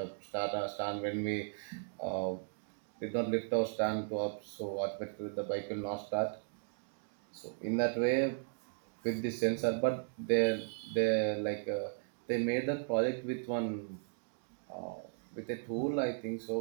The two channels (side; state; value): left; silent; digital silence